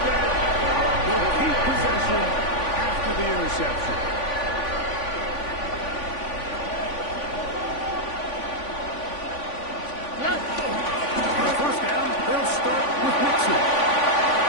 they'll keep possession after the interception. On first down, they'll start with Mixon.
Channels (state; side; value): late; right; 3.5 ms